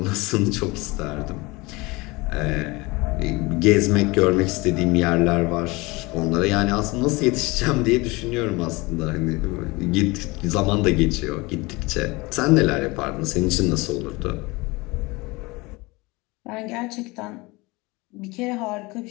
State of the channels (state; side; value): quieter; right; 23.7 dB